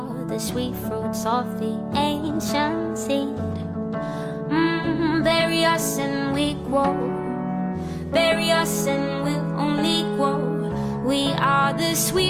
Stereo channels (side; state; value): both; identical; correlation 1.00